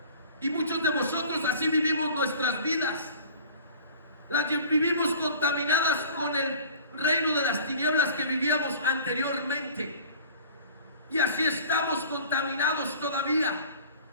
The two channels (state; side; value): inverted; both; correlation -0.45